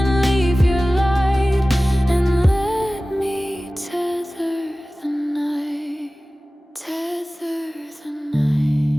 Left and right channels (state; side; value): normal; both; correlation 0.97